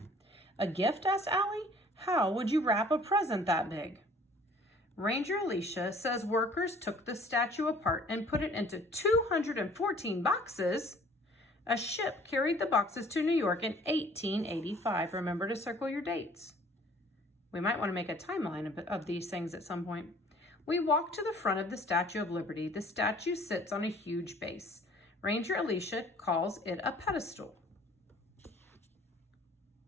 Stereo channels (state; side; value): normal; both; correlation 0.53